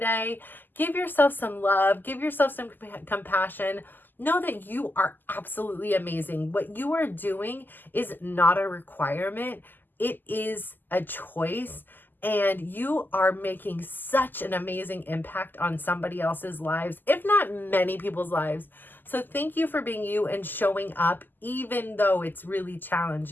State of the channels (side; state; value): right; late; 0.089 ms